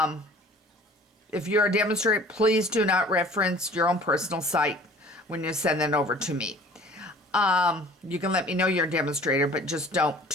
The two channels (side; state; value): both; normal; correlation 0.48